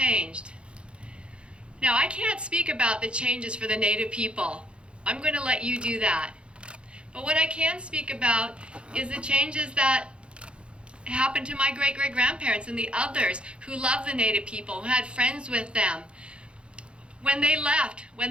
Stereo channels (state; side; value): late; left; 0.057 ms